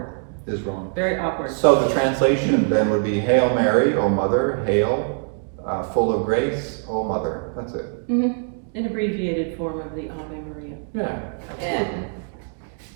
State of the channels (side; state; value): left; silent; 58 dB below the other